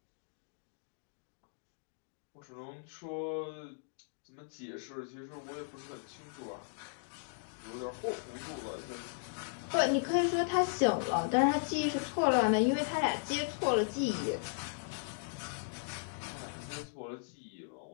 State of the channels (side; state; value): right; silent; digital silence